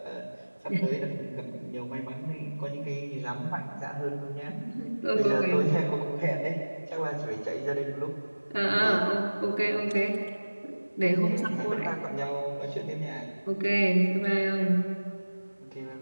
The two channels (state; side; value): inverted; both; correlation -1.00